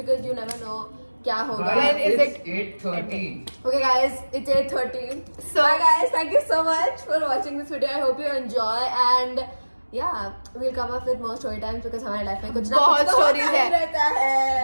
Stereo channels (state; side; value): inverted; both; correlation -1.00